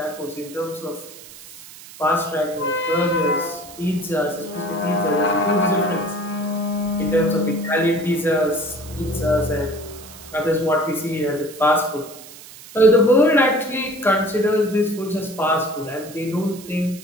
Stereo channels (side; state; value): right; noise; hiss, 17 dB below the sound